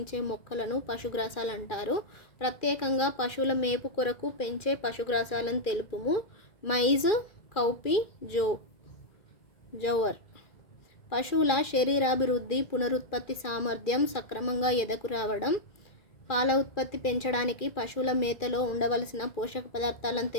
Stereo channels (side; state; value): right; late; 2.4 ms